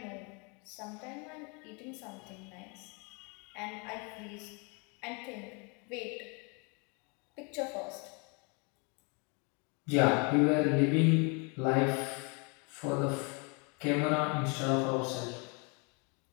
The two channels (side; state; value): right; quieter; 33.0 dB